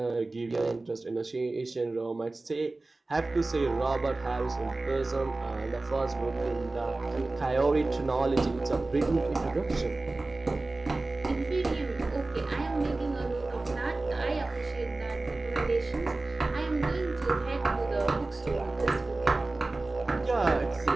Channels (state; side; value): quieter; left; 3.1 dB